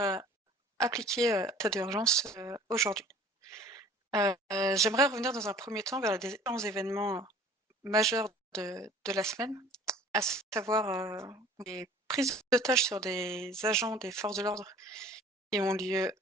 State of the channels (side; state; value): both; normal; correlation 0.49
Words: appliquer l'état d'urgence aujourd'hui. J'aimerais revenir dans un premier temps vers les différents événements majeurs de la semaine, à savoir les prises d'otages sur des agents des forces de l'ordre qui ont lieu